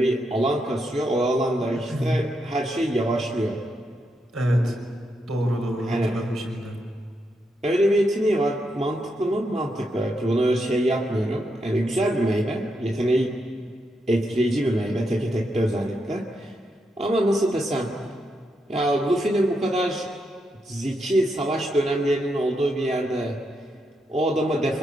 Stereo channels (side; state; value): both; normal; correlation 0.82